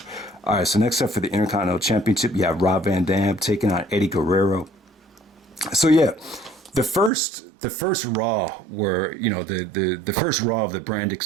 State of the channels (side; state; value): left; drops out; at 7.1 s